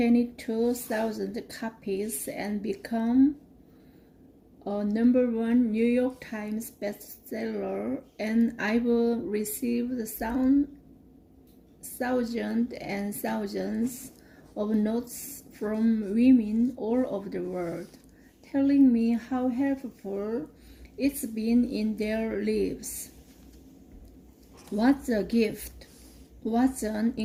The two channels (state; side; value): identical; both; correlation 1.00